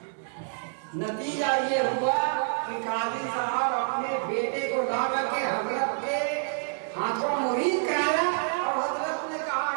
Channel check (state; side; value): silent; left; 60 dB below the other